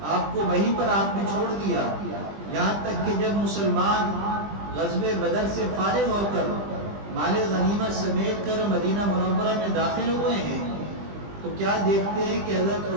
آپ کو وہیں پر آپ نے چھوڑ دیا، یہاں تک کہ جب مسلمان غزوہ بدر سے فارغ ہو کر مال غنیمت سمیٹ کر مدینہ منورہ میں داخل ہوئے ہیں، تو کیا دیکھتے ہیں کہ حضرت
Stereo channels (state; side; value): late; left; 20 ms